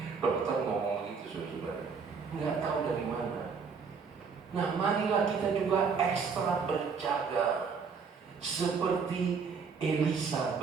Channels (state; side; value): quieter; left; 5.6 dB